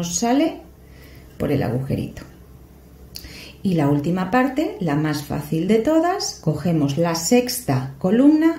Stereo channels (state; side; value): identical; both; correlation 1.00